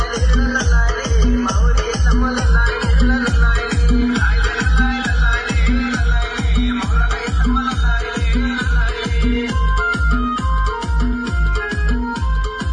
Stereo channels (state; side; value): identical; both; correlation 1.00